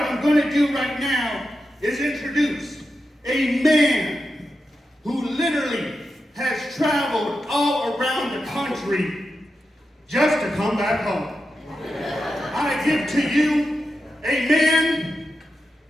going to do right now is introduce a man who literally has traveled all around the country just to come back home. I give to you a man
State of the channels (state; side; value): normal; both; correlation 0.89